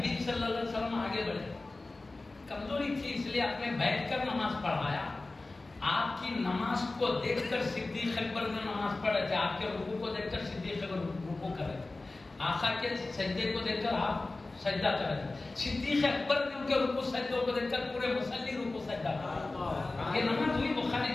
صلی اللہ علیہ وسلم آگے بڑھے، کمزوری تھی اس لیے آپ نے بیٹھ کر نماز پڑھایا، آپ کی نماز کو دیکھ کر صدیق اکبر نے نماز پڑھ رہے تھے، آپ کے رکوع کو دیکھ کر صدیق اکبر رکوع کر رہے تھے، آقا کے سجدے کو دیکھ کر آپ سجدہ کر رہے تھے، صدیق اکبر نے ان کے رکوع سجدوں کو دیکھ کر پورے مصلی رکوع سجدہ کر، یہ نماز ہوئی بخاری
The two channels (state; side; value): quieter; right; 3.2 dB